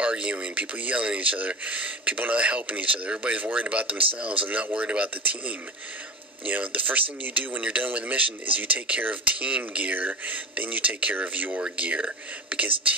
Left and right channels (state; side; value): normal; both; correlation 0.29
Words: people yelling at each other, people not helping each other. Everybody's worried about themselves and not worried about the team. You know, the first thing you do when you're done with a mission is you take care of team gear, then you take care of your gear. Because